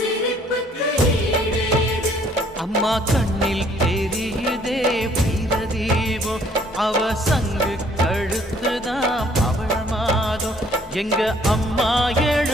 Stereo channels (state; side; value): normal; both; correlation 0.61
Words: அம்மா கண்ணில் தெரியுதே வீரதீபம், அவ சங்கு கழுத்துதான் பவளமாதம். எங்க அம்மா